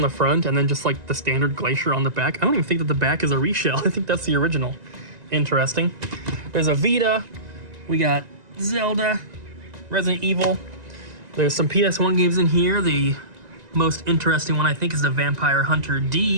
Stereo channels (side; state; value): left; late; 1.9 ms